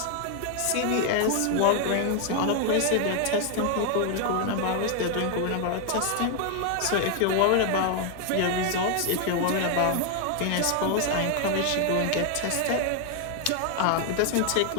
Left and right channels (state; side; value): different; both; correlation 0.00